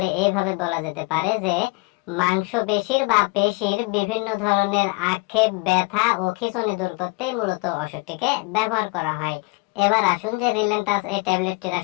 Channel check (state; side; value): quieter; right; 27.4 dB